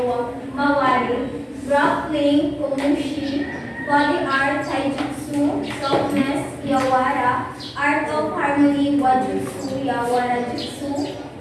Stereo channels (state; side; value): identical; both; correlation 1.00